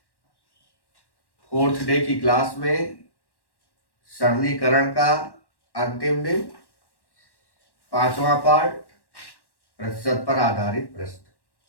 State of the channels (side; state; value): right; late; 1.1 ms